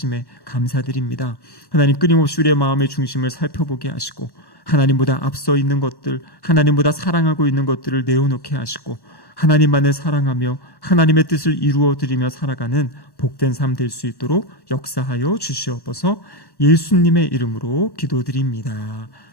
감사드립니다. 하나님 끊임없이 우리의 마음의 중심을 살펴보게 하시고 하나님보다 앞서 있는 것들, 하나님보다 사랑하고 있는 것들을 내어놓게 하시고 하나님만을 사랑하며 하나님의 뜻을 이루어드리며 살아가는 복된 삶 될 수 있도록 역사하여 주시옵소서. 예수님의 이름으로 기도드립니다.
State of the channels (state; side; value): late; right; 1.1 ms